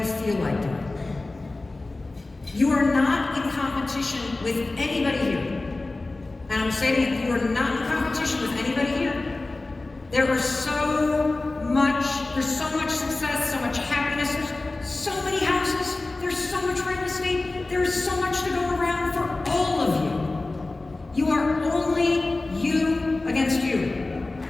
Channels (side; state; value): right; quieter; 3.1 dB